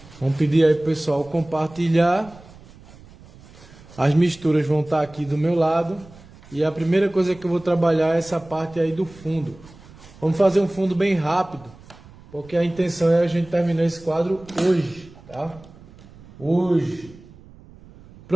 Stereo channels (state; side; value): noise; right; rumble, 22 dB below the sound